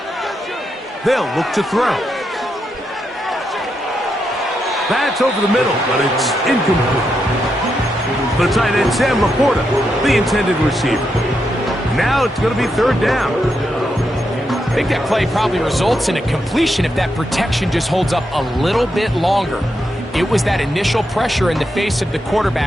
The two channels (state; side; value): normal; both; correlation 0.83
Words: They'll look to throw. That's over the middle, but it's incomplete. The tight end, Sam Laporta, the intended receiver. Now it's going to be 3rd down. I think that play probably results in a completion if that protection just holds up a little bit longer. It was that initial pressure in the face of the